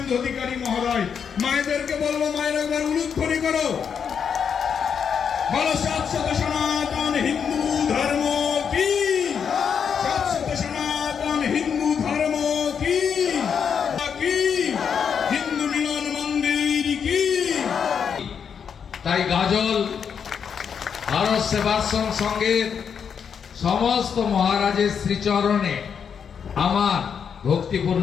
অধিকারী মহোদয়। মায়েদেরকে বলবো, মায়ের একবার উলুধ্বনি করো, বলো শাশ্বত সনাতন হিন্দু ধর্ম কি, শাশ্বত সনাতন হিন্দু ধর্ম কি, হিন্দু মিলন মন্দির কি। তাই গাজল ভারত সেবাশ্রম সংঘের সমস্ত মহারাজের শ্রীচরণে আমার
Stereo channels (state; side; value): quieter; right; 7.1 dB